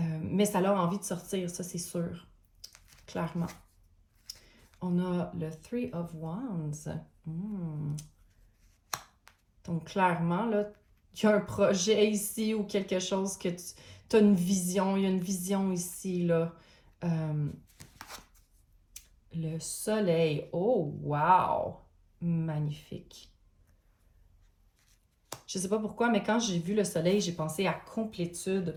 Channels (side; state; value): both; identical; correlation 1.00